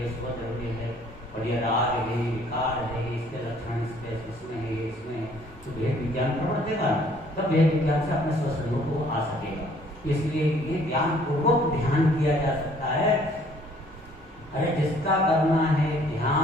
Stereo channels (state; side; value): normal; both; correlation 0.59